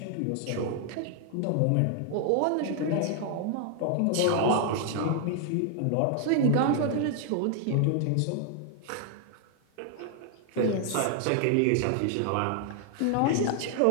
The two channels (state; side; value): different; both; correlation 0.00